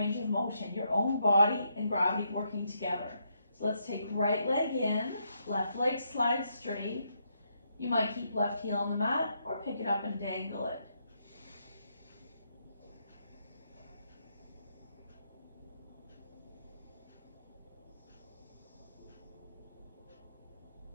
of motion, your own body and gravity working together. So let's take right leg in, left leg slides straight. You might keep left heel on the mat or pick it up and dangle it.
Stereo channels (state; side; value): inverted; both; correlation -0.78